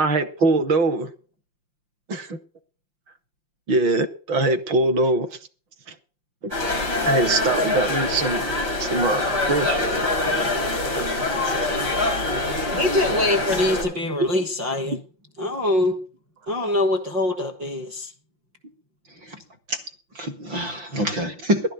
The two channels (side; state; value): left; late; 5.7 ms